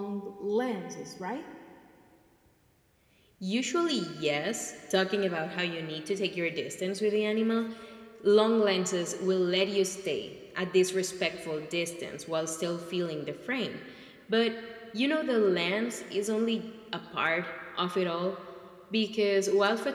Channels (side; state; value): both; identical; correlation 1.00